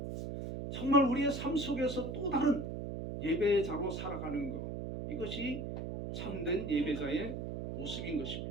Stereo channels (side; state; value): right; noise; hum, 5 dB below the sound